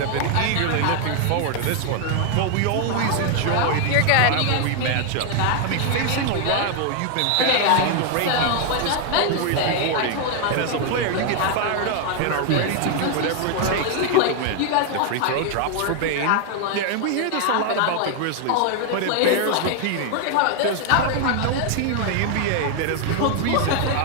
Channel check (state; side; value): different; both; correlation 0.00